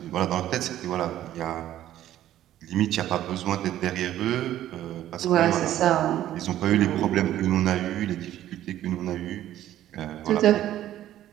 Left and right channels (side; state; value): left; quieter; 12.7 dB